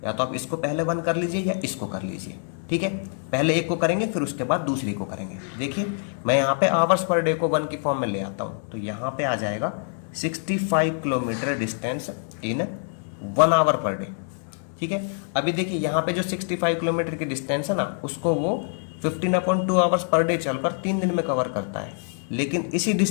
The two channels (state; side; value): silent; right; 61 dB below the other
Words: या तो आप इसको पहले 1 कर लीजिए या इसको कर लीजिए, ठीक है। पहले एक को करेंगे फिर उसके बाद दूसरी को करेंगे। देखिए मैं यहाँ पे आवर्स पर डे को 1 की फॉर्म में ले आता हूँ, तो यहाँ पे आ जाएगा 65 kilometre distance in 1 hour per day, ठीक है। अभी देखिए यहाँ पे जो 65 किलोमीटर की डिस्टेंस है ना, उसको वो 15/2 आवर्स पर डे चलकर 3 दिन में कवर करता है। लेकिन इसी